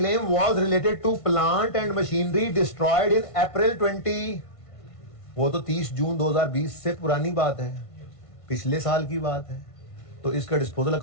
was related to plant and machinery destroyed in April 20, वो तो 30 जून 2020 से पुरानी बात है, पिछले साल की बात है। तो इसका डिस्पोजल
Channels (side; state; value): right; late; 1.5 ms